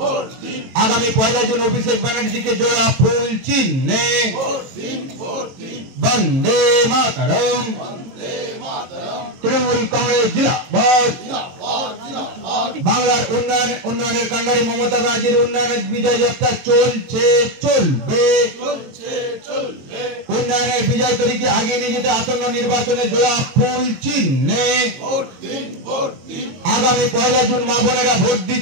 आगामी 1 जून अभिषेक बनर्जी के जोड़ा फूल चिन्हे वंदे मातरम, तृणमूल कांग्रेस जिंदाबाद। बांगलार उन्नयনের কান্ডারি মমতা ব্যানার্জির উন্নয়নের বিজয় যাত্রা চলছে চলবে। উন্নয়নের বিজয় তরীকে আগিয়ে নিয়ে যেতে আসন্ন নির্বাচনে জোড়া ফুল চিহ্নে আগামী 1 জুন মা বোনেরা ভোট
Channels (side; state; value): left; late; 23 ms